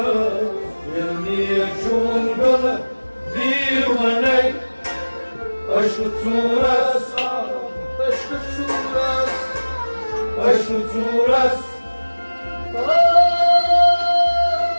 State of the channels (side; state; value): both; inverted; correlation -1.00